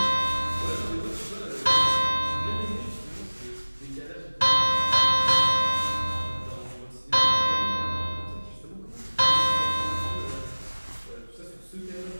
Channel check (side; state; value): both; inverted; correlation -1.00